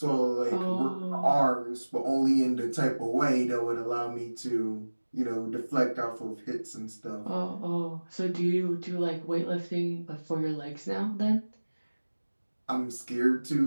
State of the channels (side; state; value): both; inverted; correlation -1.00